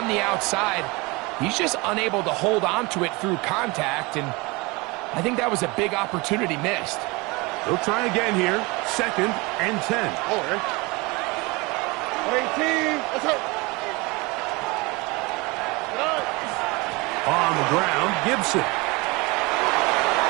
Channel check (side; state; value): left; quieter; 25.2 dB